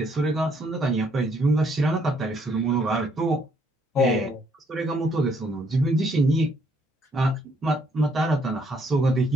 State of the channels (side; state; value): both; normal; correlation 0.69